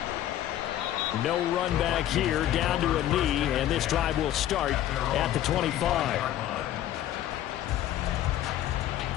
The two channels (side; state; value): right; quieter; 12.3 dB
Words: No run back here, down to a knee, and this drive will start at the 25.